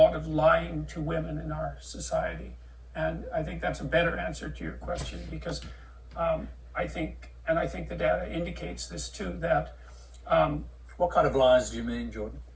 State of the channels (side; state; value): both; identical; correlation 1.00